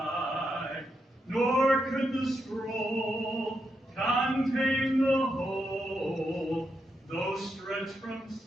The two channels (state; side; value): normal; both; correlation 0.83